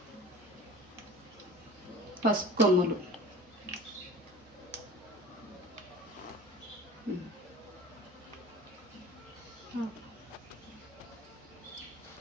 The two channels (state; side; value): normal; both; correlation 0.41